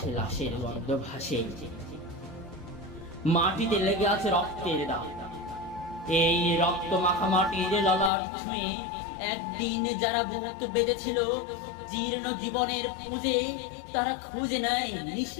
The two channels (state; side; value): drops out; right; at 8.1 s